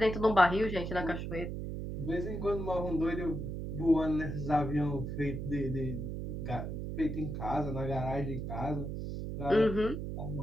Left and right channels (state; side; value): noise; right; hum, 5 dB below the sound